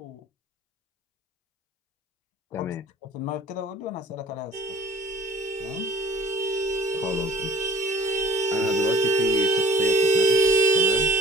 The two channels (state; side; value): normal; both; correlation 0.51